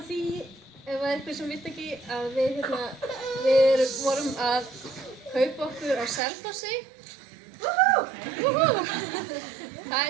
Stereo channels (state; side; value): drops out; left; at 6.2 s